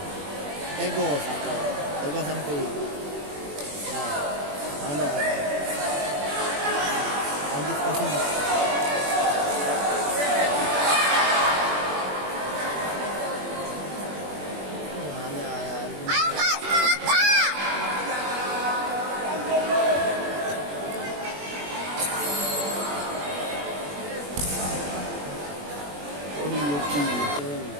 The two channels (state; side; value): late; left; 21 ms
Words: Tegos. Tegos sampai. Mana? Ambil pasang. Ayo Kak, semangat Kak.